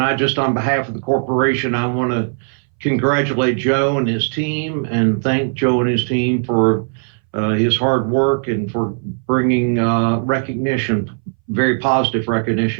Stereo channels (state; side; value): silent; left; 63 dB below the other